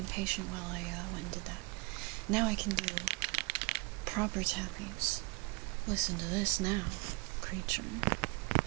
patient while I went and did that. Now I can do proper tappings. Listen to this now, creature.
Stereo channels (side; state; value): left; quieter; 27.3 dB